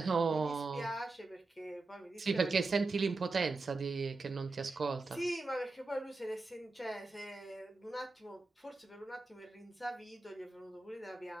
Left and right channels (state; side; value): quieter; left; 3.5 dB